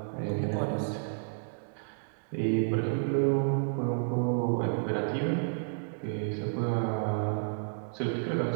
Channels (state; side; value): silent; left; digital silence